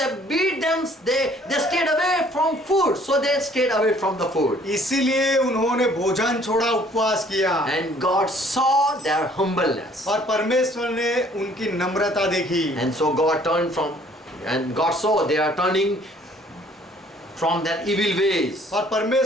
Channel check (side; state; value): both; normal; correlation 0.58